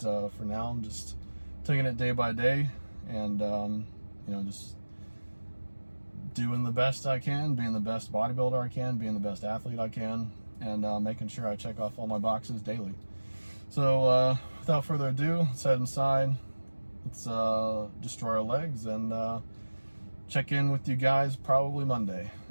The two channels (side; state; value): both; inverted; correlation -1.00